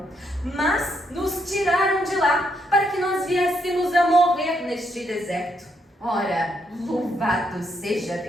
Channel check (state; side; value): normal; both; correlation 0.76